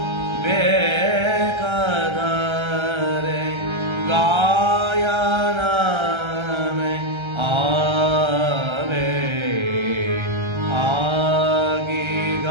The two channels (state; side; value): late; left; 1.3 ms